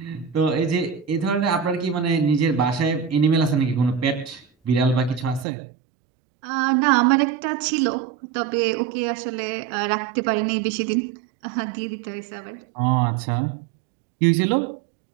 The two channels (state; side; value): drops out; left; at 5.5 s